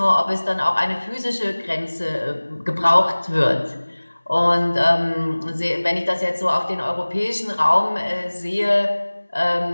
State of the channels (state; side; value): inverted; both; correlation -1.00